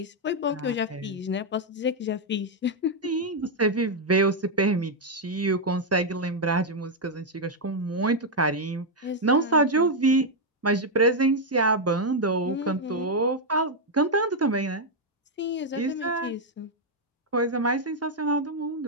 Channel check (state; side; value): normal; both; correlation -0.01